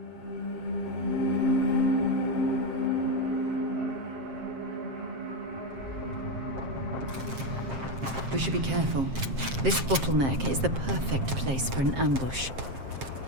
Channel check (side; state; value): left; late; 7.5 ms